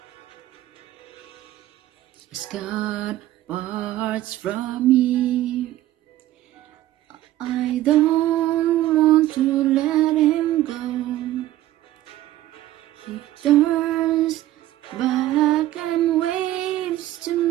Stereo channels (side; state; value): left; quieter; 14.6 dB